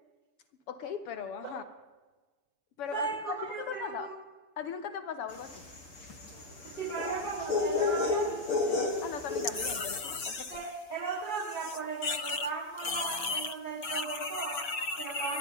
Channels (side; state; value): right; late; 7.4 ms